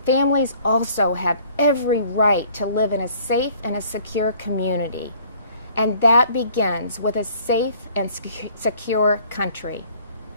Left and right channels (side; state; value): both; inverted; correlation -0.56